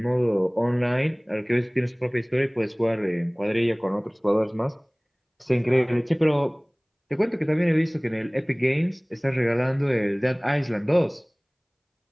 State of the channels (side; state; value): both; identical; correlation 1.00